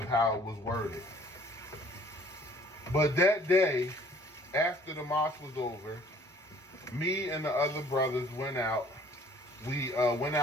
how it was worded. But that day, after the mosque was over, me and the other brothers went out. We went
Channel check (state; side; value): normal; both; correlation 0.55